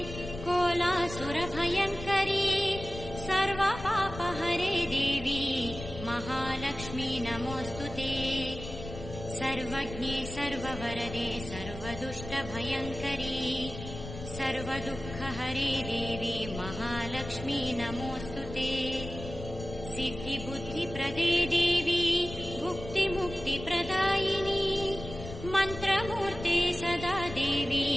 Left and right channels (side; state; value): left; noise; rumble, 11 dB below the sound